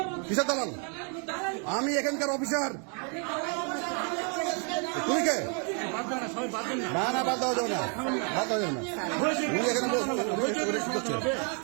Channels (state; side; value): quieter; left; 39.2 dB